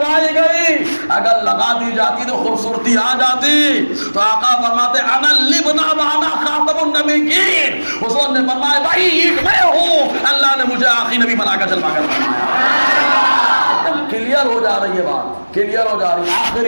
گئی؟ اگر لگا دی جاتی تو خوبصورتی آ جاتی. تو آقا فرماتے انا اللبنہ وانا خاتم النبیین. حضور نے فرمایا بھائی اینٹ میں ہوں، اللہ نے مجھے آخری نبی بنا کر جلوا کر بنایا. کلیئر ہو جا رہی ہے بات، کلیئر ہو جا رہی ہے.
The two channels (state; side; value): inverted; both; correlation -1.00